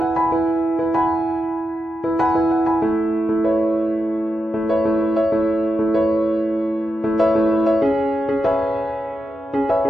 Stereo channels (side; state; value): both; normal; correlation 0.88